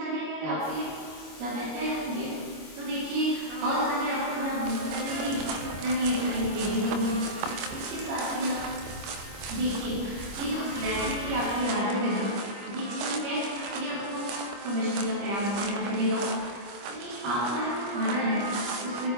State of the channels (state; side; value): late; left; 25 ms